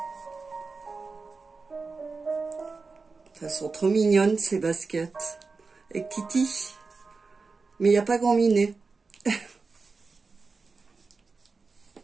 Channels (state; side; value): quieter; left; 4.3 dB